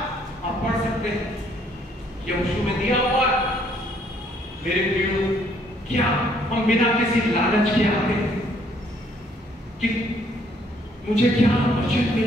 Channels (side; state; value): both; normal; correlation 0.65